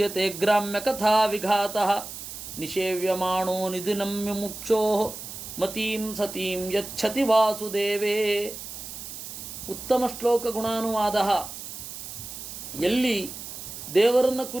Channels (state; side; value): noise; right; hiss, 10 dB below the sound